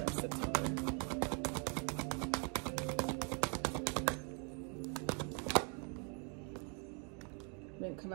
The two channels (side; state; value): left; quieter; 38.4 dB